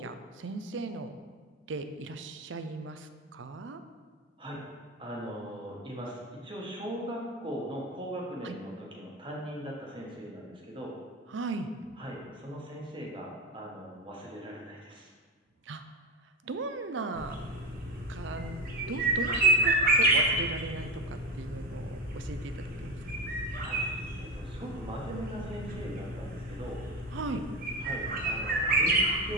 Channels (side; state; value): both; normal; correlation 0.20